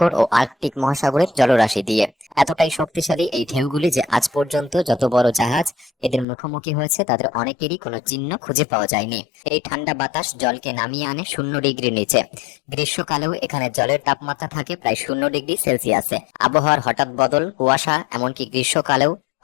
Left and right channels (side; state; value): right; drops out; at 6.2 s